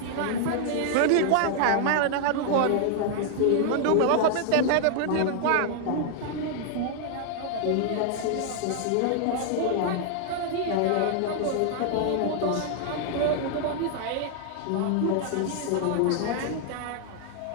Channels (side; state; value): both; different; correlation 0.00